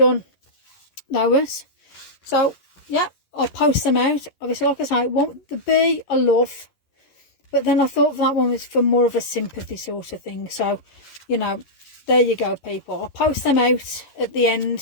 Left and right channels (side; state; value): right; late; 11 ms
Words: those. So, yeah, I'll post them out. Obviously, like I say, it won't be a love, but then I thought that one was for more of a sympathy sort of thing. So, you know, there you go, people. I'll post them out at the